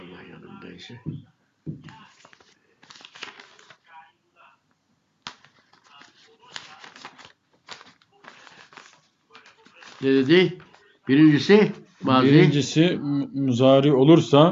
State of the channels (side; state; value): both; identical; correlation 1.00